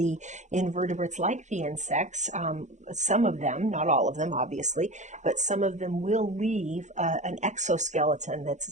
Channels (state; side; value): late; left; 0.35 ms